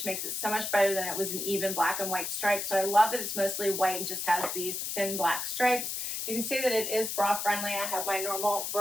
makes it so much better than it was an even black and white stripe. So I love that it's mostly white and just has these thin black stripes. You can see that it is bra friendly. I have my normal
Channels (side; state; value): left; noise; hiss, 3 dB below the sound